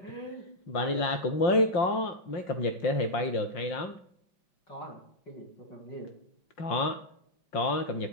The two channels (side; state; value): right; late; 5.7 ms